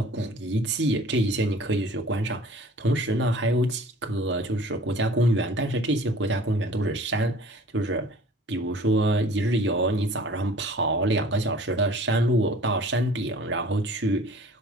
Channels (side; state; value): both; normal; correlation 0.48